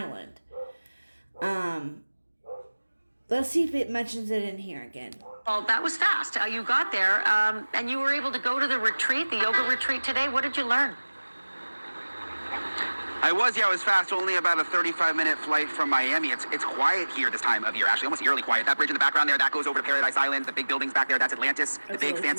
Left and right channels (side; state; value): both; inverted; correlation -1.00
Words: Let's see if it mentions it in here again. well, that was fast. You got there, and you were able to go to the retreat, the yoga retreat today. What did you learn? I was fast. Only about a 35-minute flight from Miami. It's quiet here this time of year, actually, almost eerily quiet. That bridge in the background there, that goes over to Paradise Island. The big buildings back there, that's Atlantis, the big,